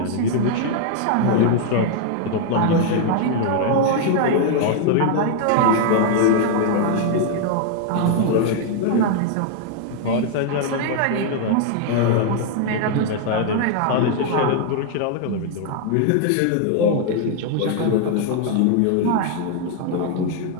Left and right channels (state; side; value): different; both; correlation 0.00